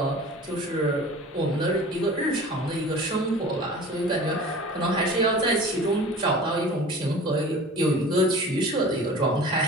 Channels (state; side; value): normal; both; correlation 0.41